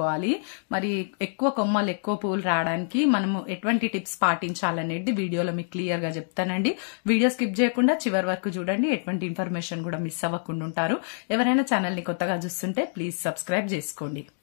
మరి ఎక్కువ కొమ్మలు ఎక్కువ పువ్వులు రావడానికి మనము ఎటువంటి టిప్స్ పాటించాలనేది వీడియోలో మీకు క్లియర్గా చెప్తానండి. వీడియో స్కిప్ చేయకుండా చివరి వరకు చూడండి. ఎటువంటి ఇన్ఫర్మేషన్ కూడా మిస్ అవ్వకుండా ఉంటారు. ఎవరైనా ఛానల్ని కొత్తగా చూస్తుంటే ప్లీజ్ సబ్స్క్రైబ్ చేసుకోండి.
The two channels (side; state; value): right; silent; digital silence